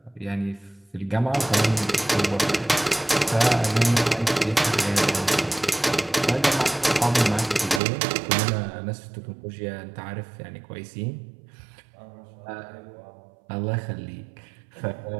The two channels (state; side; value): drops out; left; at 7.8 s